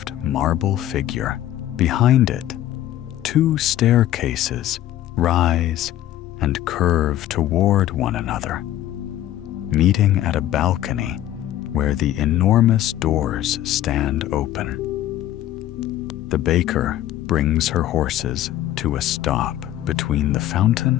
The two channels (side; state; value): right; quieter; 13.1 dB